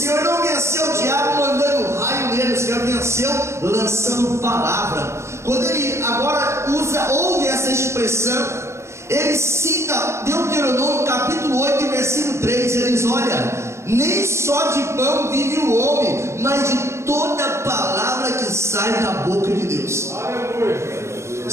não venceu o diabo mandando raio nele, o Senhor venceu lançando palavra. Quando ele agora ouve essa expressão, ele cita Deuteronômio capítulo 8, versículo 3, ele diz: olha, nem só de pão vive o homem, mas de toda palavra que sai da boca de Deus.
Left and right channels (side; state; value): left; late; 0.13 ms